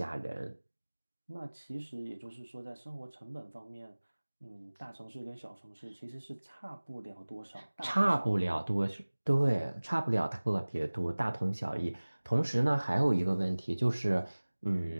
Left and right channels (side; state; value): both; inverted; correlation -1.00